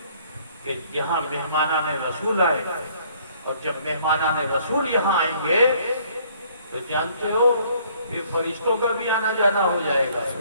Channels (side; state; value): both; inverted; correlation -0.61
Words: کہ یہاں مہمانان رسول آئے، اور جب مہمانان رسول یہاں آئیں گے تو جانتے ہو یہ فرشتوں کا بھی آنا جانا ہو جائے گا۔